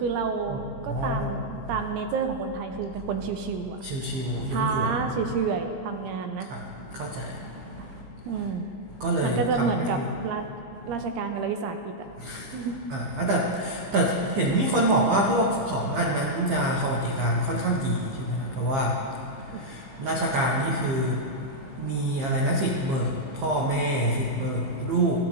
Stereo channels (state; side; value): late; left; 15 ms